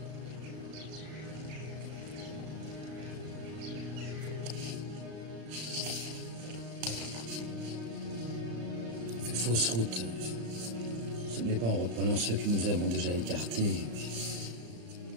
On fait fausse route. Ce n'est pas en reprenant ceux que nous avons déjà écartés.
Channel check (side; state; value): left; late; 35 ms